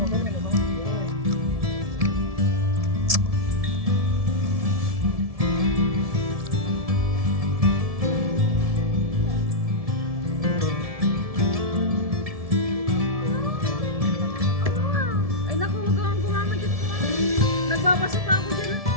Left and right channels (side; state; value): left; late; 1.7 ms